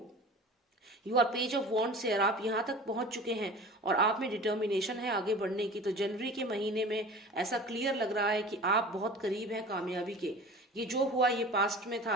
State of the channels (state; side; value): normal; both; correlation 0.39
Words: your page of wands है, आप यहाँ तक पहुंच चुके हैं और आप में डिटर्मिनेशन है आगे बढ़ने की। तो जनवरी के महीने में ऐसा क्लियर लग रहा है कि आप बहुत करीब हैं कामयाबी के। ये जो हुआ ये पास्ट में